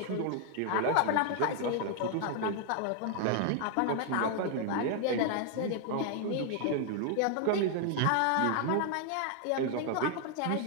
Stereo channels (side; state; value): both; different; correlation 0.00